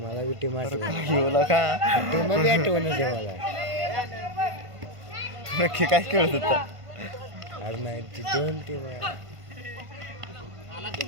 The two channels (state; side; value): late; left; 1.5 ms